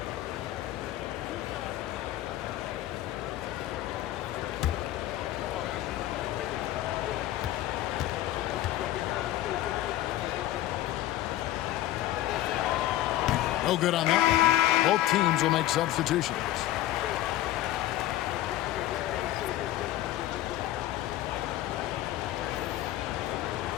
No good on that. Both teams will make substitutions.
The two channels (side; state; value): right; quieter; 14.6 dB